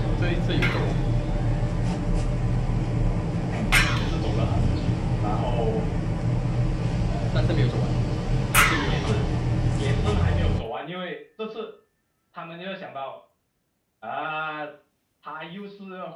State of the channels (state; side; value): identical; both; correlation 1.00